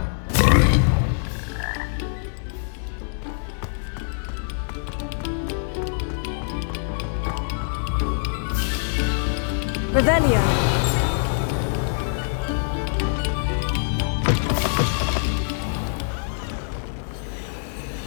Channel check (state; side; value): silent; right; 62 dB below the other